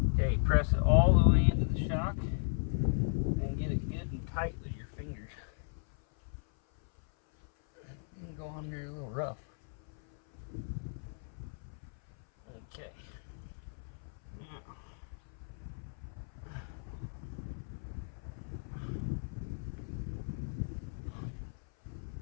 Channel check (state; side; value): silent; right; 54 dB below the other